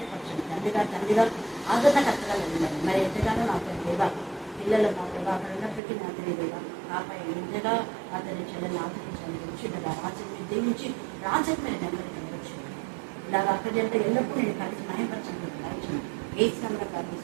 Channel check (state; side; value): drops out; left; at 5.8 s